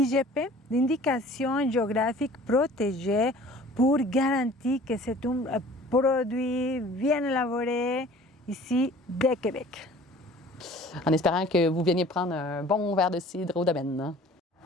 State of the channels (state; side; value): normal; both; correlation 0.48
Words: d'indication géographique protégée, pour garantir que c'est un produit bien élaboré ici de Québec. En espérant que vous veniez prendre un bon verre de cidre au domaine.